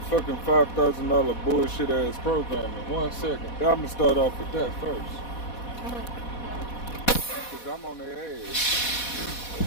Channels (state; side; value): late; right; 4.1 ms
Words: fucking $5,000 bullshit ass program in 1 second. I'm gonna start off with that first. Cause I'm on their ass.